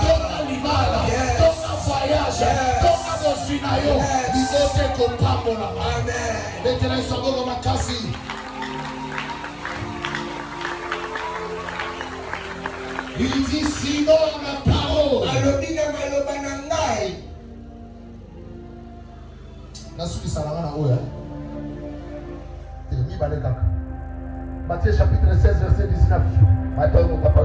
tonga libala tonga voyage tonga bosina yo bizote kopambola amen betela isogolo makasi. Il dit sinon ma parole. Matthieu chapitre 16 verset 19. Ce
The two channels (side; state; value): both; identical; correlation 1.00